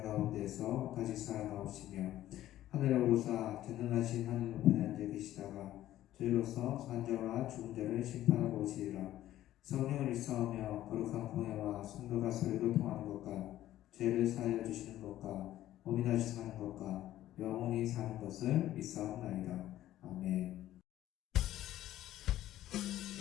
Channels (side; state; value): right; quieter; 13.6 dB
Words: 가운데서 다시 살아나오시며 하늘에 오르사 전능하신 하늘 높이에 앉아 계시다가 저희로서 산자와 죽은 자를 심판하고 오시리라. 성령을 일사하며 거룩한 공예와 성도가 서로 교통하는 것과 죄를 사하여 주시는 것과 몸이 다시 사는 것과 영원히 사는 것을 믿사옵나이다. 아멘.